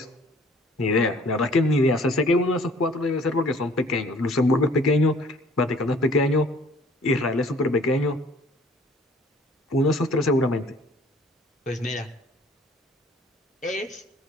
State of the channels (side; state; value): both; normal; correlation 0.54